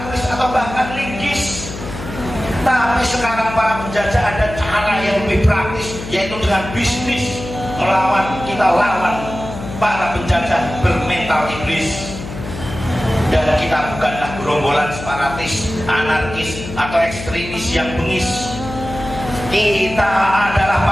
keris atau bahkan linggis. Tapi sekarang para penjajah ada cara yang lebih praktis, yaitu dengan bisnis. Melawan, kita lawan para penjajah bermental iblis. Dan kita bukanlah gerombolan separatis, anarkis atau ekstremis yang bengis. Kita adalah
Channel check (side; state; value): left; noise; hum, 10 dB below the sound